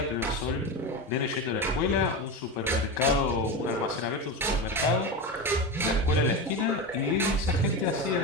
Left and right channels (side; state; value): both; normal; correlation 0.20